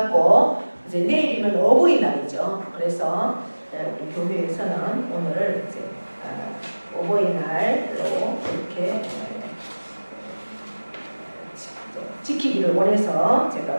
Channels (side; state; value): both; inverted; correlation -1.00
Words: 이제 내일이면 어버이날이죠. 그래서 우리 교회에서는 오늘 이제 어버이날로 이렇게 지키기를 원해서 제가